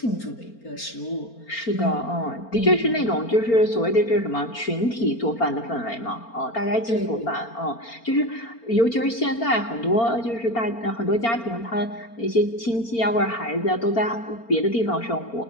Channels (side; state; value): right; late; 4.4 ms